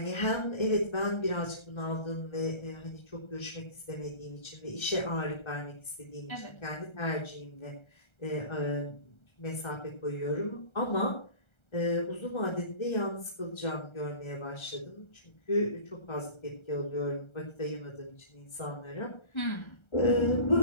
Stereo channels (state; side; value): late; right; 1.3 ms